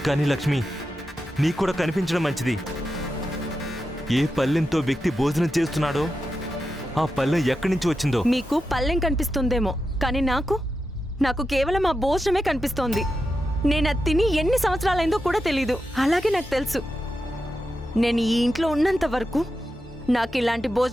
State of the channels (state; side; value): normal; both; correlation 0.89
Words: కానీ లక్ష్మి, నీకు కూడా కనిపించడం మంచిది. ఏ పల్లెంతో వ్యక్తి భోజనం చేస్తున్నాడో ఆ పల్లెం ఎక్కడి నుంచి వచ్చిందో. మీకు పల్లెం కనిపిస్తుందేమో, కానీ నాకు కేవలం ఆ భోజనమే కనిపిస్తోంది. నేను అది తిని ఎన్ని సంవత్సరాలైందో కూడా తెలీదు. అలాగే నాకు తెలుసు, నేను ఈ ఇంట్లో ఉన్నంత వరకు నాకు ఇలాంటి